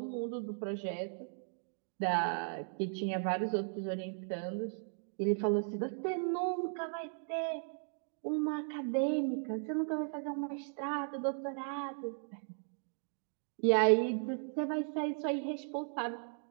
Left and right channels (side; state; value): left; silent; digital silence